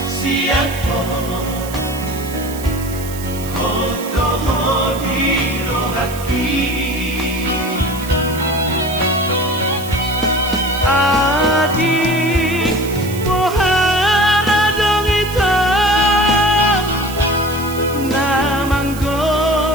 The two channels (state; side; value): noise; right; hiss, 14 dB below the sound